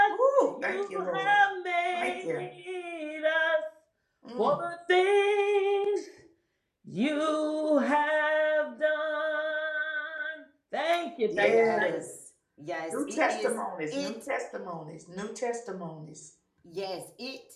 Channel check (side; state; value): both; identical; correlation 1.00